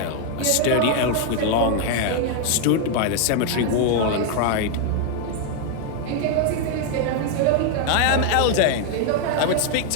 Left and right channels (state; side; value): different; both; correlation 0.00